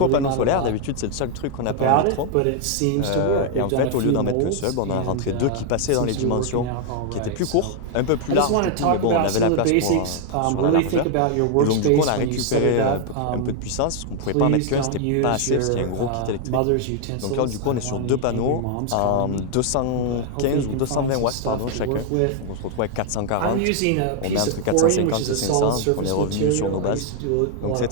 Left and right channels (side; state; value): both; different; correlation 0.01